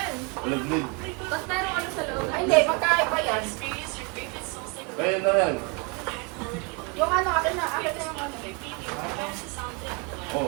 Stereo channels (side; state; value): left; quieter; 30.9 dB